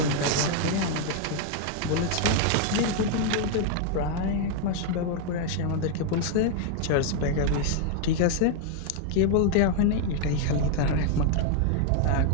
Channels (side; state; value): both; different; correlation 0.00